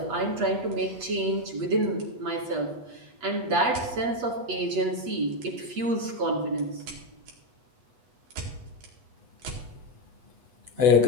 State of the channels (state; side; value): late; left; 8.2 ms